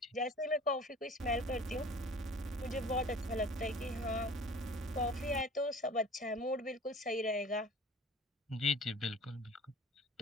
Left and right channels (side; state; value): both; normal; correlation 0.45